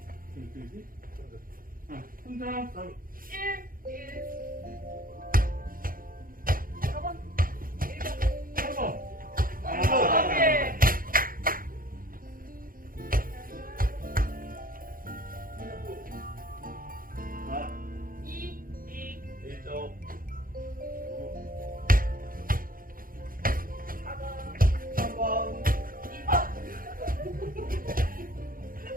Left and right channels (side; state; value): left; late; 0.41 ms